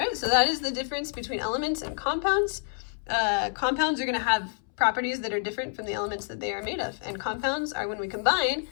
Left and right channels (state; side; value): silent; right; 59 dB below the other